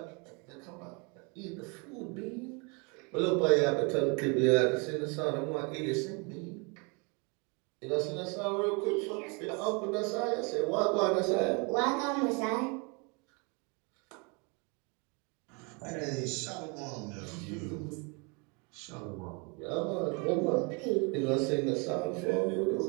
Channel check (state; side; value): quieter; left; 31.9 dB